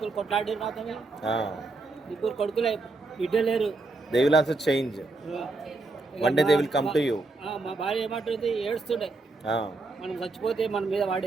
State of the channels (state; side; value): quieter; left; 3.3 dB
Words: కొట్లాడి రాతమే. 3 కొడుకులే, బిడ్డ లేరు. They will also change. One day they will come to you. మా భార్య ఏమంటుంది, ఏడుస్తుండే. మనం చచ్చిపోతే మన మీద వాడు